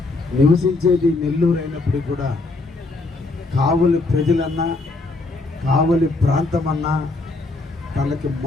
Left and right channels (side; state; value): right; quieter; 3.3 dB